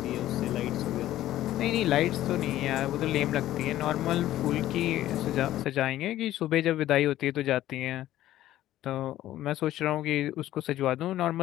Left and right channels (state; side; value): quieter; right; 13.9 dB